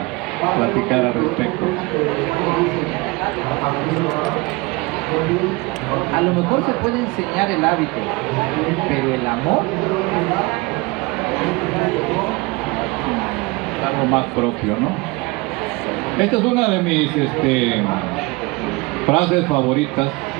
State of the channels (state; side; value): quieter; left; 24.4 dB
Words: platicar al respecto. A lo mejor se puede enseñar el hábito, pero el amor, algo más propio, ¿no? Esta es una de mis frases favoritas,